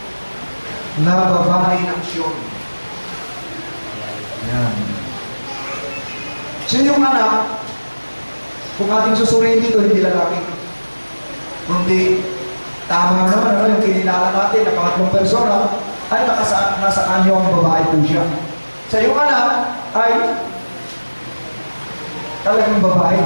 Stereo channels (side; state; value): both; inverted; correlation -1.00